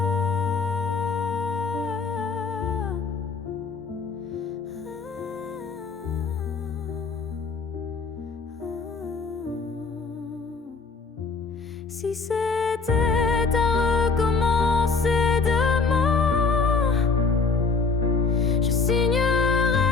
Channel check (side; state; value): right; quieter; 4.6 dB